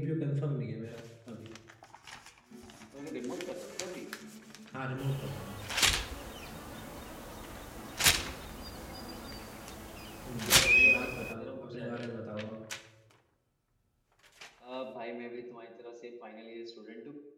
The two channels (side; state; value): both; identical; correlation 1.00